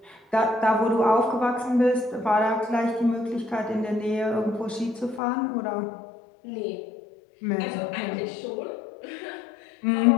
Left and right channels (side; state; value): right; drops out; at 5.2 s